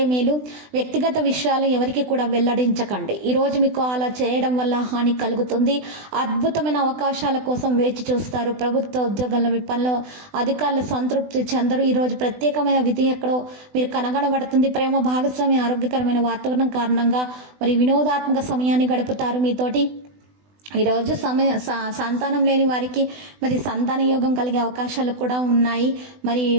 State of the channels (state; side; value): late; left; 20 ms